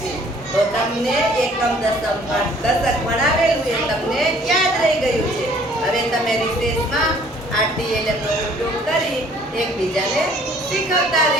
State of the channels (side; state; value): both; normal; correlation 0.57